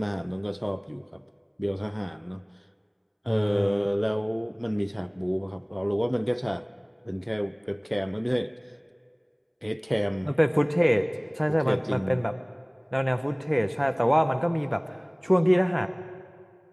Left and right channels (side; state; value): both; identical; correlation 1.00